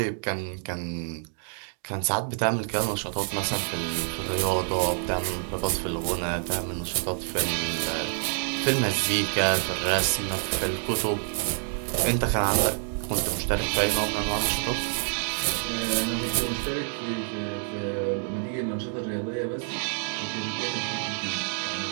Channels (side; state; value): left; silent; 60 dB below the other